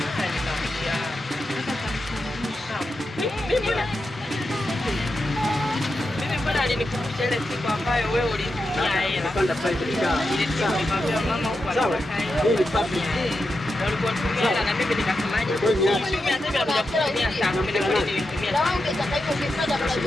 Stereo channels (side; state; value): both; normal; correlation 0.88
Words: nikamwambia. Mimi mbona alinikumbusha ile siku ambayo wewe ulinitumia hela. Napanda private car. Ile siku nikamwambia mama huko anataka hela. Hii ni public. Walikuwa tumia hela na mimi nikasemaje? Nitumia sasa bila kutumia sana. Mimi ndio nilitumia.